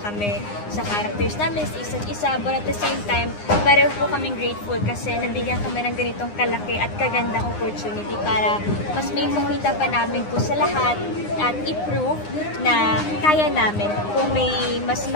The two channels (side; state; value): right; late; 9.8 ms